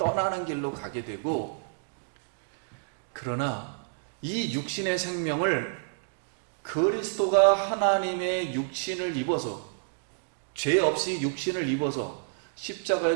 길로 가게 되고, 그러나 이 육신의 생명을 그리스도가 하나님의 육신을 입어서, 죄 없이 육신을 입어서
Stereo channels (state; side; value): silent; left; digital silence